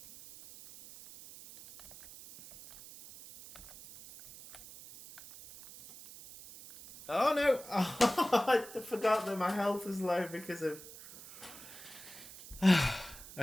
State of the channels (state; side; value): noise; right; hiss, 16 dB below the sound